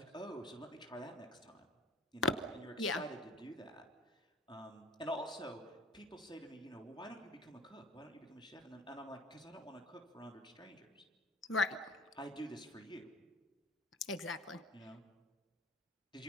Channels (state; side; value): normal; both; correlation 0.44